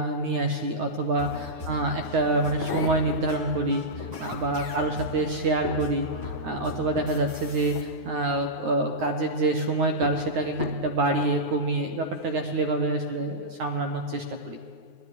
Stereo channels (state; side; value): late; left; 9.5 ms